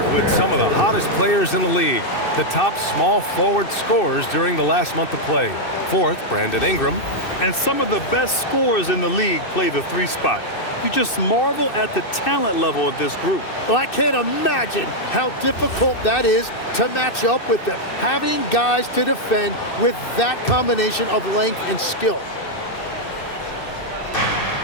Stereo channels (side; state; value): right; late; 2.6 ms